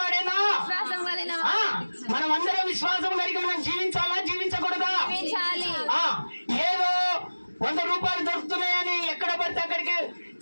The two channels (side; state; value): both; inverted; correlation -1.00